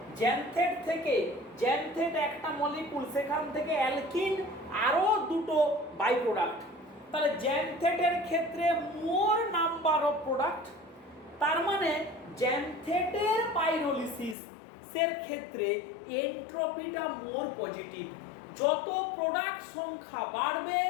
জ্যানথেট থেকে জ্যানথেট একটা মলিকুল, সেখান থেকে অ্যালকিন আরো দুটো বাই প্রোডাক্ট। তাহলে জ্যানথেটের ক্ষেত্রে মোর নাম্বার অফ প্রোডাক্ট, তার মানে জ্যানথেটের পাইরোলিসিস এর ক্ষেত্রে এন্ট্রপিটা মোর পজিটিভ। যত প্রোডাক্ট সংখ্যা বাড়বে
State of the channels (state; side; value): drops out; right; at 14.4 s